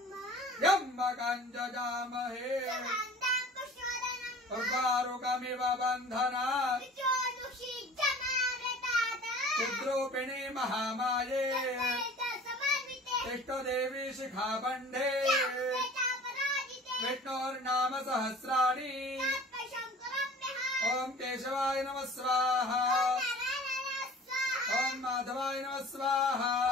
यम्मकञ्जजामहे उर्वारुकमिव बन्धनात् चिद्रूपिणी महामाये इष्टदेवी शिखाबन्धे विष्णोर्नाम सहस्राणि ओम केशवाय नमः स्वाहा ओम माधवाय नमः स्वाहा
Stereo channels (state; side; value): normal; both; correlation 0.44